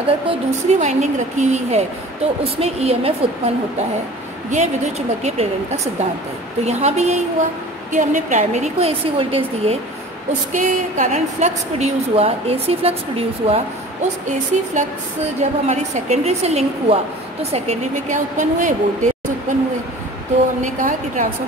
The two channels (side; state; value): both; normal; correlation 0.43